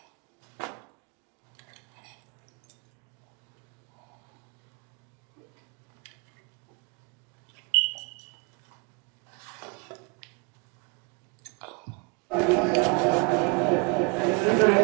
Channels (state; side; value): quieter; left; 32.1 dB